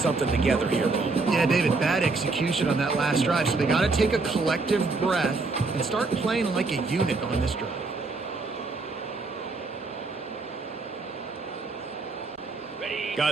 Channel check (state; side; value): quieter; left; 3.8 dB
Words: together here, Bo. Yeah, David, bad execution on that last drive. So they got to take a collective breath and start playing like a unit on this drive.